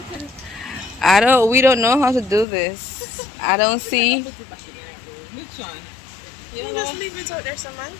We don't know how to do this. I don't see. Which one? You just leave it out there, someone.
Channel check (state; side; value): drops out; right; at 2.5 s